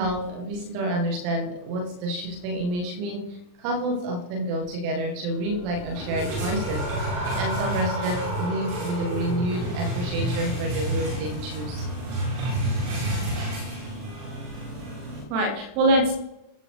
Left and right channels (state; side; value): late; left; 40 ms